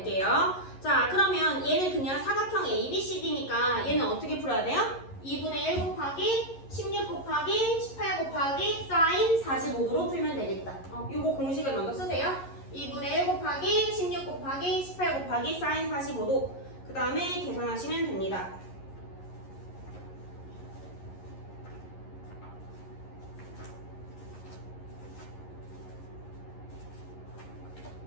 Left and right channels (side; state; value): right; late; 11 ms